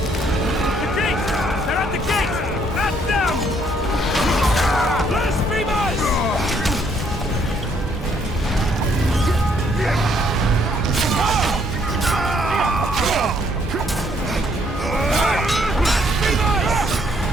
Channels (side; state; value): both; normal; correlation 0.68